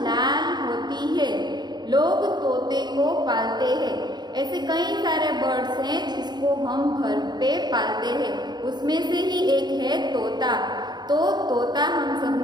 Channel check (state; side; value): late; left; 0.21 ms